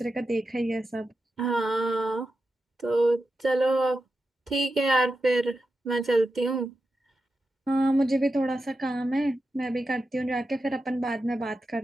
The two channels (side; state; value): both; normal; correlation 0.90